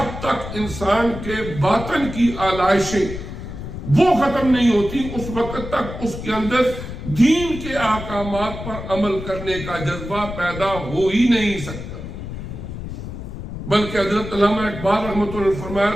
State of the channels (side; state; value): left; noise; rumble, 9 dB below the sound